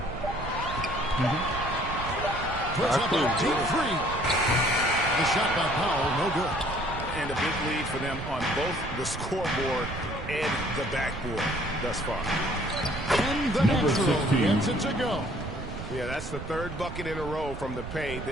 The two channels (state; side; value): noise; right; rumble, 9 dB below the sound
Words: Puts up a deep 3. The shot by Powell, no good. And a big lead for them on both the scoreboard and the backboard thus far. And the Natural gets it to go. Yeah, that's the 3rd bucket in a row from the paint.